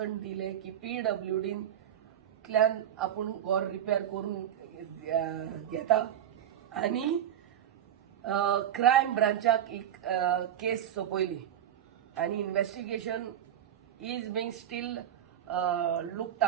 दिले की PWDंतल्यान आपूण घर रिपेर करून घेता आनी क्रायम ब्रांचाक एक केस सोपयली आनी investigation is being steel looked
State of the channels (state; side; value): quieter; left; 10.3 dB